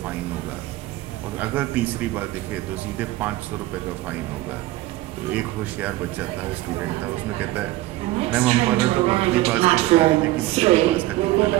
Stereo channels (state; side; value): quieter; left; 16.9 dB